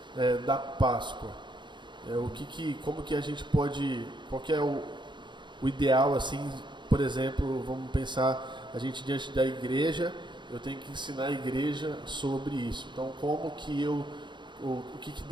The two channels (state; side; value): late; left; 0.23 ms